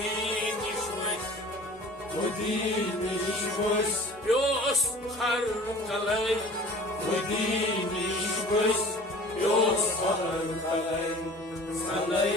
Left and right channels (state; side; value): normal; both; correlation 0.44